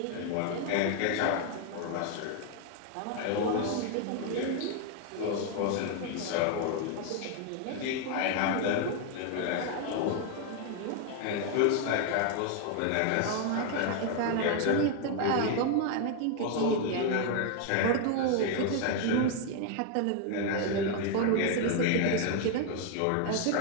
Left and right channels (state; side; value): different; both; correlation 0.01